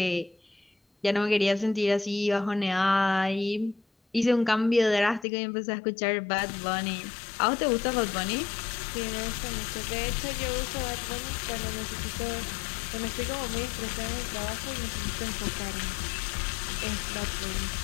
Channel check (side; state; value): right; drops out; at 5.2 s